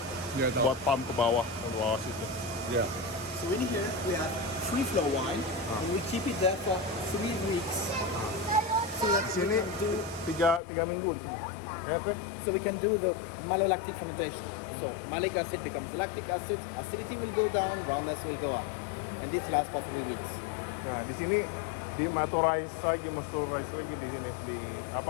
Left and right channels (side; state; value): right; drops out; at 10.6 s